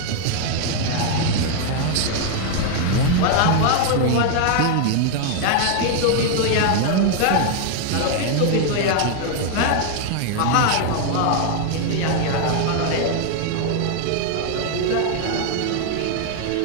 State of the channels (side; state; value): both; different; correlation 0.00